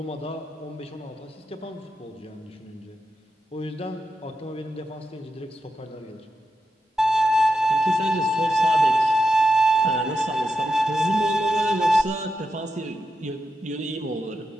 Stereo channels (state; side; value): normal; both; correlation 0.87